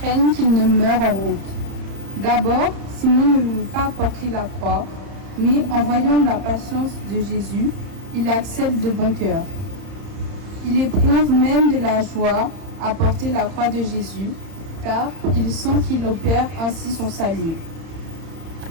qu'il ne meure en route. D'abord, Simon ne veut pas porter la croix, mais en voyant la patience de Jésus, il accepte de bon cœur. Il éprouve même de la joie à porter la croix de Jésus, car il sent qu'il opère ainsi son salut.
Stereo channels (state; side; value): late; left; 31 ms